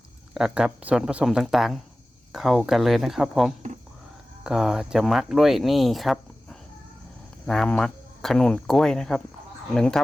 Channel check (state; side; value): normal; both; correlation 0.96